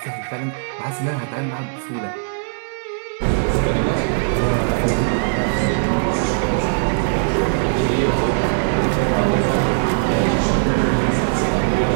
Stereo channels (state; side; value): silent; left; digital silence